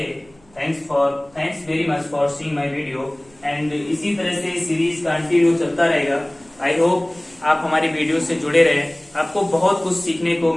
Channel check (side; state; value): right; noise; rumble, 29 dB below the sound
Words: thanks very much for seeing my video. And इसी तरह से सीरीज कंटिन्यू चलता रहेगा। आई होप आप हमारी वीडियो से जुड़े रहे, आपको बहुत कुछ सीखने को